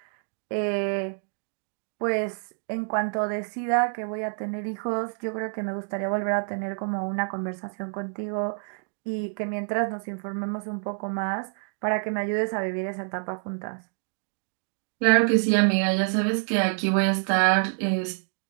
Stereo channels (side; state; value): left; silent; 56 dB below the other